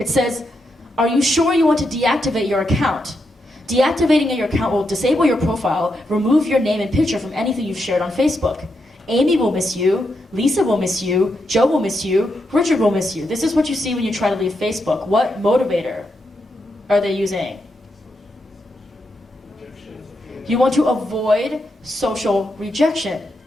says, are you sure you want to deactivate your account? Deactivating your account will disable your profile, remove your name and picture from anything you've shared on Facebook. Amy will miss you, Lisa will miss you, Joe will miss you, Richard will miss you. This is what you see when you try to leave Facebook. What motivator are they using? You want to avoid social rejection.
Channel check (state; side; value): normal; both; correlation 0.83